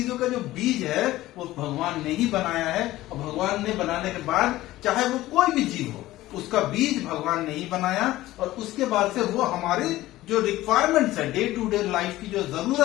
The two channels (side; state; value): right; quieter; 16.3 dB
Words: का जो बीज है वो भगवान ने ही बनाया है, और भगवान ने बनाने के बाद चाहे वो कोई भी जीव हो, उसका बीज भगवान ने ही बनाया, और उसके बाद से वो हमारी जो रिक्वायरमेंट्स है, डे टू डे लाइफ की जो